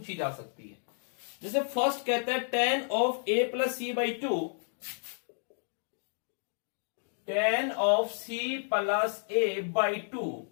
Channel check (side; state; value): right; silent; digital silence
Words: जा सकती है। जैसे फर्स्ट कहता है tan of a plus C by 2, tan of c plus a by 2